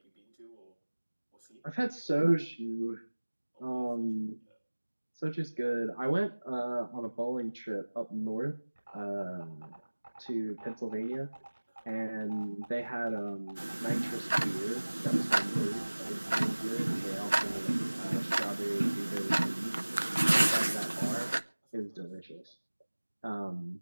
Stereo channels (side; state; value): both; inverted; correlation -1.00